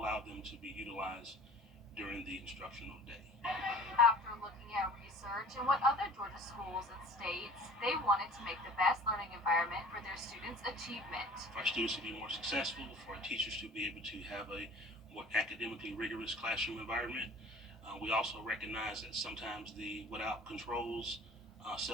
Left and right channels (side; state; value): both; normal; correlation 0.45